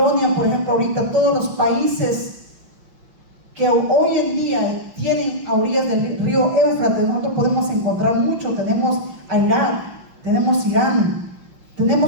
por ejemplo, ahorita todos los países que hoy en día tienen a orillas del río Éufrates, nosotros podemos encontrar mucho. Tenemos a Irak, tenemos Irán,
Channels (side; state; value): left; late; 5.7 ms